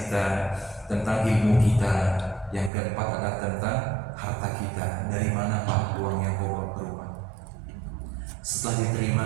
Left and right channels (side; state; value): left; drops out; at 2.7 s